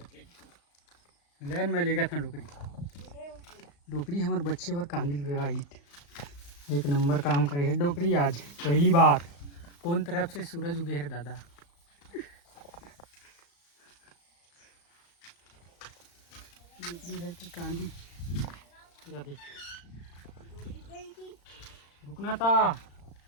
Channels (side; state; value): right; late; 35 ms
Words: लेन में ले गया था डुकरी डुकरी हमारे बच्चे पर कांदिल हुआ हिट एक नंबर काम करे है डोकरी आज पहली बार कौन तरफ से सूरज उगे है दादा डोकरी है कि कांदी या देख रुकना था